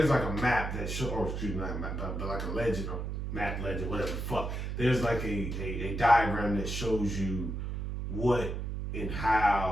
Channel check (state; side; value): noise; right; hum, 4 dB below the sound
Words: like a map that show, or excuse me, not a map, but like a legend or map legend, whatever the fuck. There's like a diagram that shows you what and